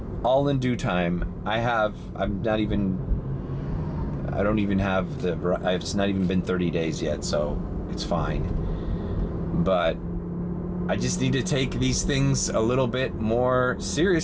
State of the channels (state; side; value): identical; both; correlation 1.00